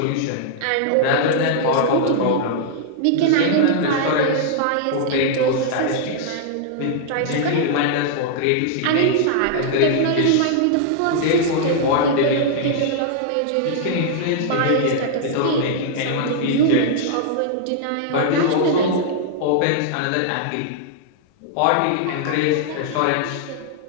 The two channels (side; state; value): both; different; correlation -0.01